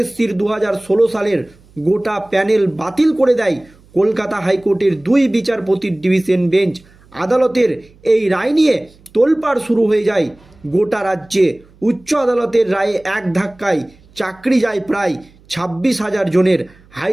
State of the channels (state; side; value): noise; right; hum, 28 dB below the sound